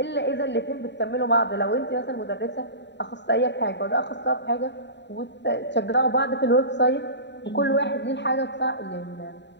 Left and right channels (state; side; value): late; right; 0.52 ms